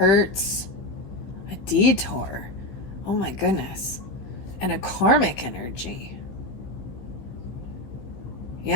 A detour. Oh my goodness. And a karmic energy.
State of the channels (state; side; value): late; right; 16 ms